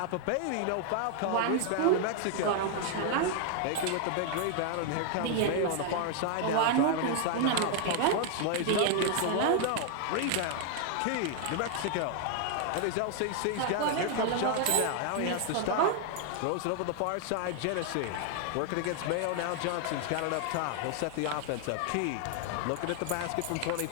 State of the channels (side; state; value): both; different; correlation 0.00